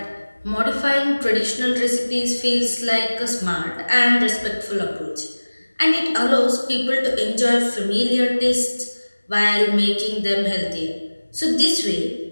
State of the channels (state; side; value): inverted; both; correlation -1.00